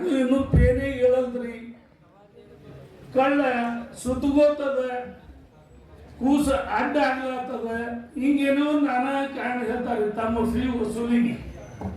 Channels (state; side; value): identical; both; correlation 1.00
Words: ಇನ್ನೂ ಪೇನೇ ಹೇಳಲ್ರಿ. ಕಳ್ಳ ಸುತ್ತಗೋತದ, ಕೂಸ ಅಡ್ಡ ಆಗ್ಲತ್ತದ, ಹಿಂಗೇನೋ ನಾನಾ ಕಾರಣ ಹೇಳ್ತಾರೆ ತಮ್ಮ ಫೀ ವಸೂಲಿಗೆ.